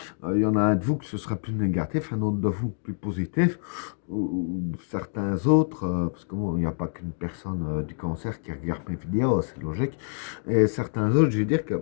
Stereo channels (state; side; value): silent; right; digital silence